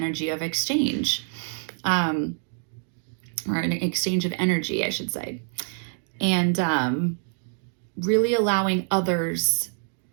of exchange, or an exchange of energy, I should say. And really allowing others.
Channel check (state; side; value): silent; left; 61 dB below the other